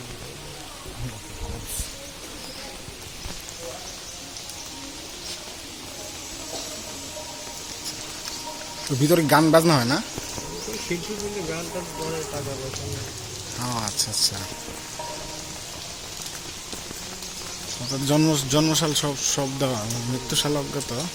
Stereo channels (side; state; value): both; identical; correlation 1.00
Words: তো ভিতরে গান বাজনা হয় না? শিল্পী বলে গান টান করে, টাকা পয়সা। আচ্ছা আচ্ছা, জন্মসাল সব দেওয়া, মৃত্যুসাল অজ্ঞাত